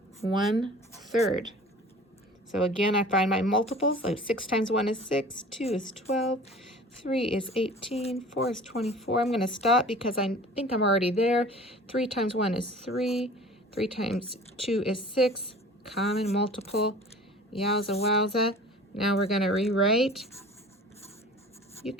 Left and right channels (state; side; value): normal; both; correlation 0.43